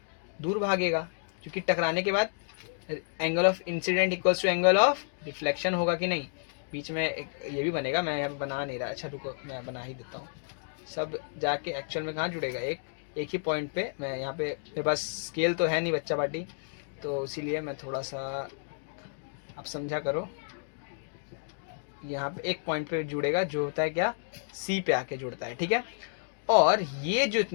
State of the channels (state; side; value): silent; right; digital silence